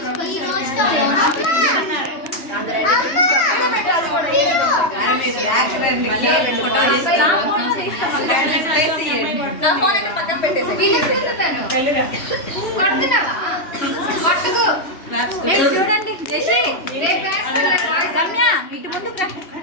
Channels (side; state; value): right; late; 3.1 ms